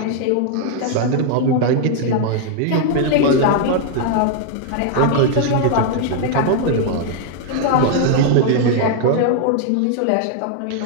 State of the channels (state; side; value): different; both; correlation 0.00